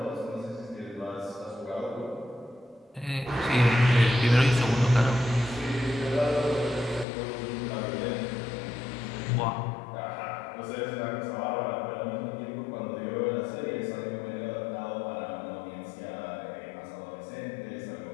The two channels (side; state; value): right; drops out; at 7.1 s